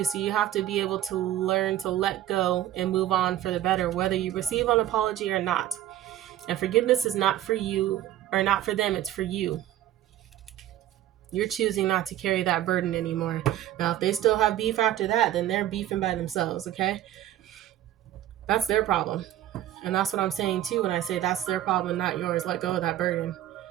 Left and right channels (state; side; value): quieter; left; 12.9 dB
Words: So you have to be able to learn to let go and move on for the better, whether you receive an apology or not. And forgiveness is not for you or not for them, it's for you. You're choosing not to carry that burden anymore. Now, if they still have beef after that, then they're beefing by themselves, okay? That's their problem. And that's what I'm saying too when I say that's their problem, not yours. Let go of that burden.